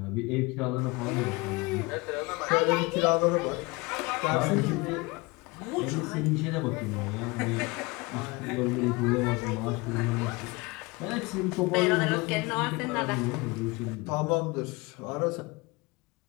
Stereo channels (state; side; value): quieter; right; 24.9 dB